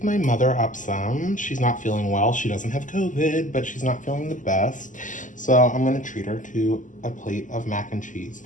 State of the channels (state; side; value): late; right; 0.37 ms